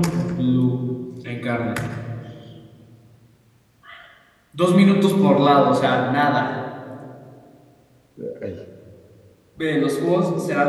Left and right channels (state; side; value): identical; both; correlation 1.00